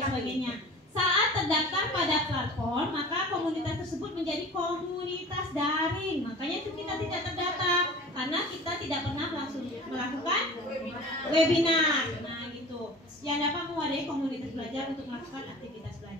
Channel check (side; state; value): both; normal; correlation 0.40